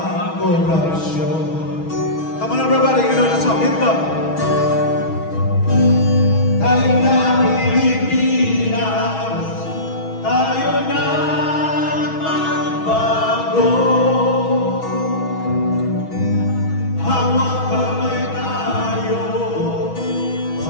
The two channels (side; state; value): right; late; 6.2 ms